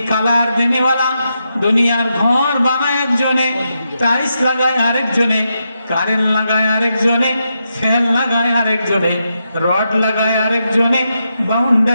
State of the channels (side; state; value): both; inverted; correlation -0.85